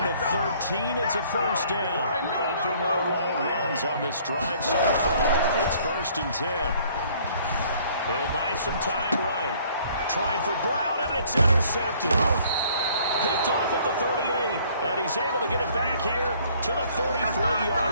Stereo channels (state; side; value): inverted; both; correlation -0.59